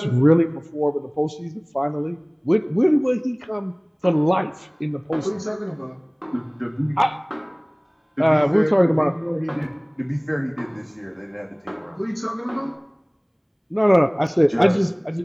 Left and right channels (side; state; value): both; identical; correlation 1.00